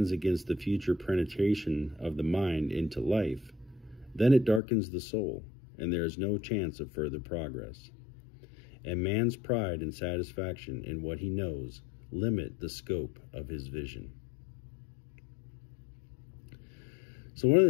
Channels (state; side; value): drops out; right; at 4.6 s